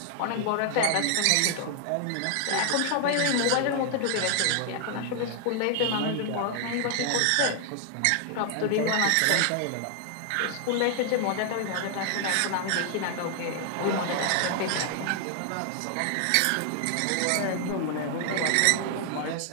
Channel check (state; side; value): different; both; correlation 0.00